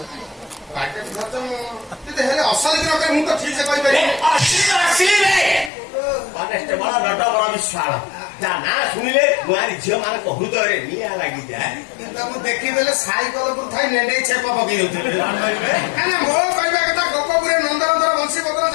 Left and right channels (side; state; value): right; drops out; at 5.7 s